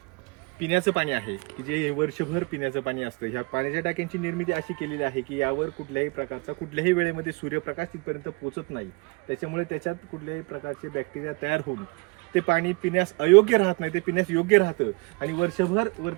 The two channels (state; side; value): quieter; left; 30.1 dB